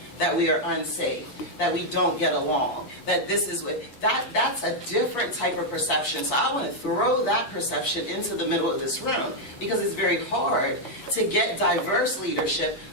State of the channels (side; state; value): right; late; 8.4 ms